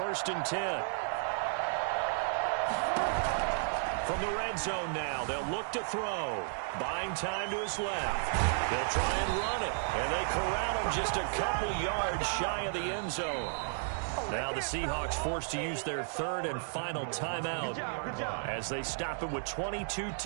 and 10. From the red zone now, they'll look to throw. Buying time to his left. They'll try and run it, and they corral him just a couple yards shy of the end zone. Now the Seahawks forced to use their 3rd and final timeout as they stop it with 22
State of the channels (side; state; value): left; silent; digital silence